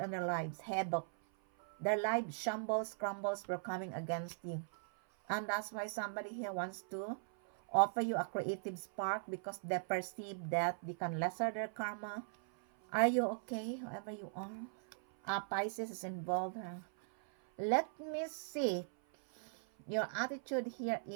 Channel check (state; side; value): silent; left; 51 dB below the other